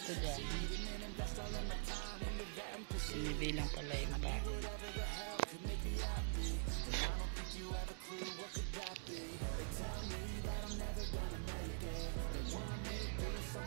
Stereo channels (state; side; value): silent; left; digital silence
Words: dyan? Sinibilang pala yung bahay.